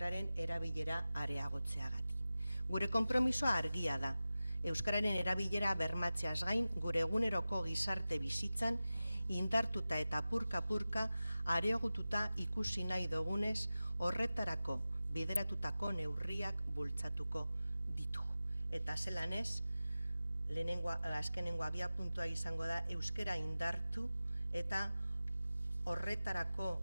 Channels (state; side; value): inverted; both; correlation -0.95